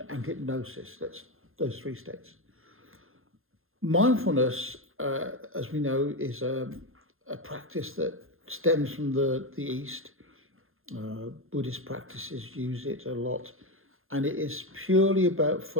and hypnosis. That's those three states. Mindfulness, as we know, is a practice that stems from the East. Buddhist practices use it a lot. And it is purely about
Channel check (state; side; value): late; left; 0.60 ms